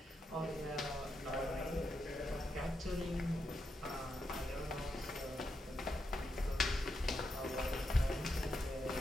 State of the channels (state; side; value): normal; both; correlation 0.84